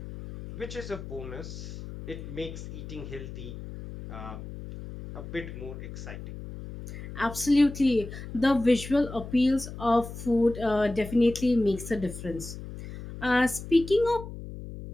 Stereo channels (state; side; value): noise; left; hum, 11 dB below the sound